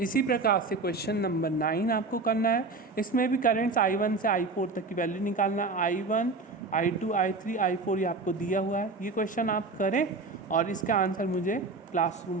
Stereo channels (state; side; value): quieter; left; 3.7 dB